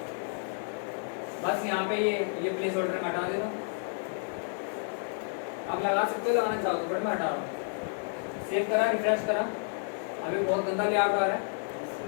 बस यहाँ पे ये प्लेस होल्डर में हटा देता हूँ। आप लगा सकते हो, लगाना चाहो तो, बट मैं हटा रहा हूँ। सेव करा, रिफ्रेश करा, अभी बहुत गंदा लेआउट आ रहा है,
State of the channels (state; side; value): silent; right; 57 dB below the other